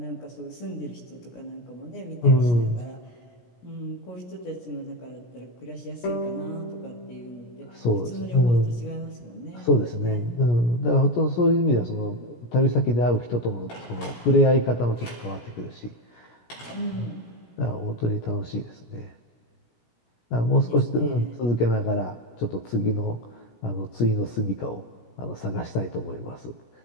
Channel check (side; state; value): right; late; 17 ms